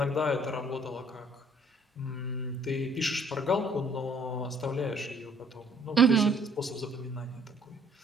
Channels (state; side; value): normal; both; correlation 0.61